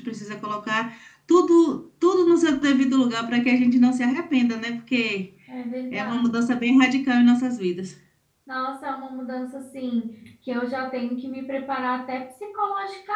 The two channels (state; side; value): identical; both; correlation 1.00